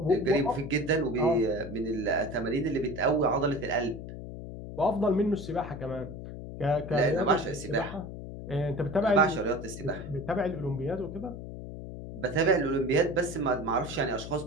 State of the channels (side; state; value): left; noise; hum, 10 dB below the sound